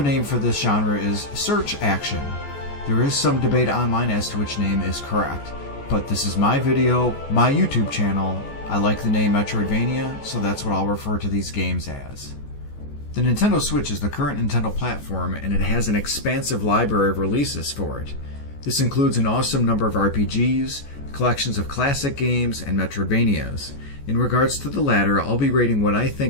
name for this genre is search action. There is some debate online as to which name is correct, but this is my video, my YouTube channel. I like the name Metroidvania, so that's what I'll refer to these games as. The Nintendo Switch is the current Nintendo platform, and it has an expansive library of releases for it. This includes an awesome number of RPGs, collections of classic games, and Metroidvanias. In regards to the latter, I'll be rating what I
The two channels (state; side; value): late; right; 14 ms